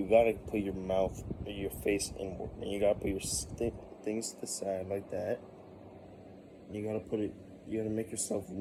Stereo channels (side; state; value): both; identical; correlation 1.00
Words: gotta put your mouth, your face inward, and you gotta put your things to the side like that. You gotta make yourself